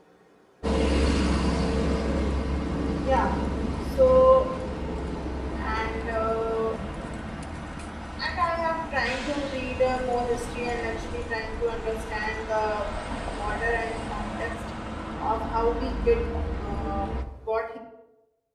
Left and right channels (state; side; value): identical; both; correlation 1.00